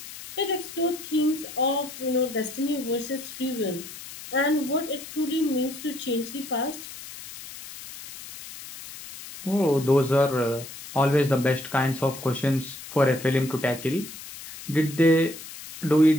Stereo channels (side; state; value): left; noise; hiss, 13 dB below the sound